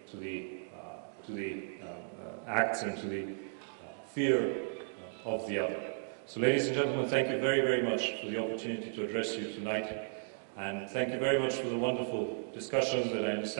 to the acts and to the fear of the other. So, ladies and gentlemen, thank you very, very much for the opportunity to address you tonight, and thank you very much for the wonderful discussions that I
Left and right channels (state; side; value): silent; left; digital silence